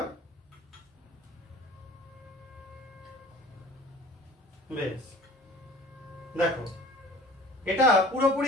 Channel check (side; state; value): both; normal; correlation 0.46